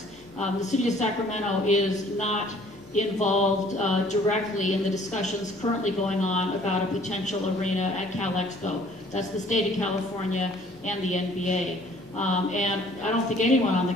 The city of Sacramento is not involved directly in the discussions currently going on about a potential arena at Cal Expo. That's the state of California and the NBA. And I don't think anyone on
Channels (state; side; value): normal; both; correlation 0.56